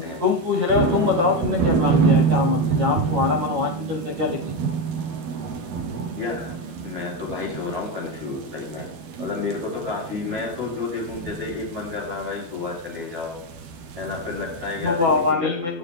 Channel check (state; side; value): late; left; 12 ms